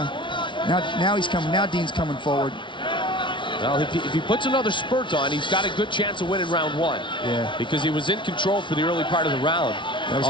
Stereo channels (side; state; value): right; late; 0.24 ms